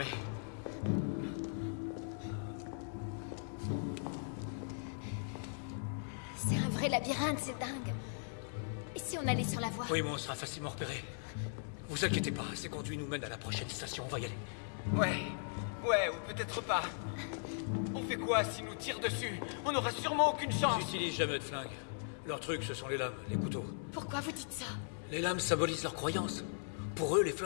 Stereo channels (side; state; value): right; silent; digital silence